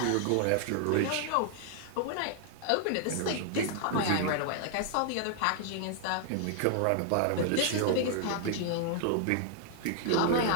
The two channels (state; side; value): different; both; correlation 0.00